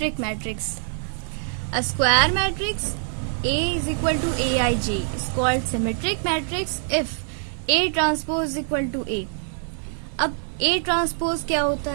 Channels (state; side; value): silent; left; digital silence